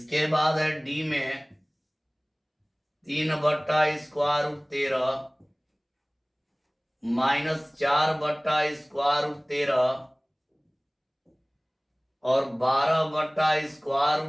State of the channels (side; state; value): both; identical; correlation 1.00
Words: बाद है डी में 3/√13 -4/√13 और